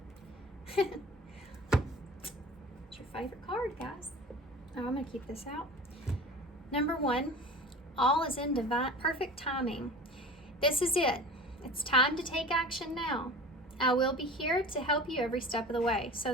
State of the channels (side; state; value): both; normal; correlation 0.38